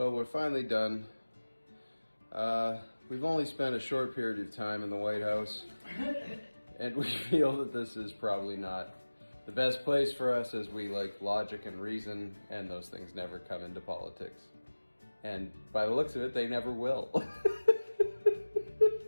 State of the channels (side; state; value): both; inverted; correlation -1.00